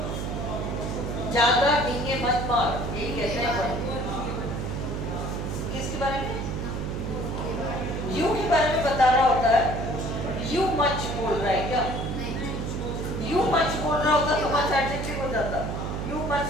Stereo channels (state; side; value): noise; right; hum, 3 dB below the sound